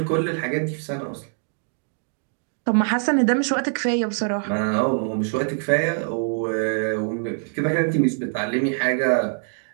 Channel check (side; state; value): left; silent; 63 dB below the other